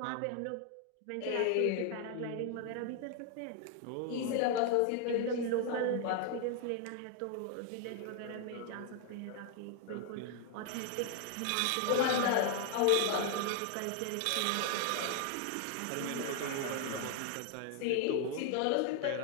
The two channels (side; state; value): both; different; correlation 0.00